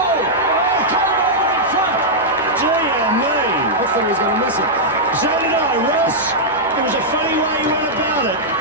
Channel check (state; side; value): normal; both; correlation -0.07